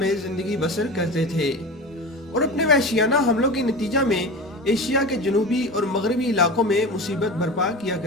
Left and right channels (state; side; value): normal; both; correlation 0.30